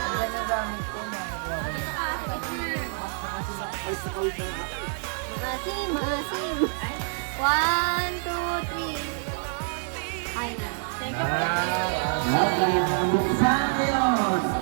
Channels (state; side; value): silent; left; 60 dB below the other